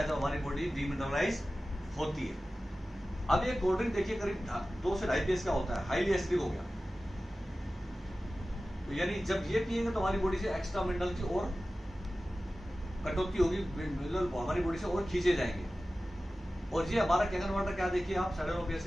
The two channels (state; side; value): normal; both; correlation 0.95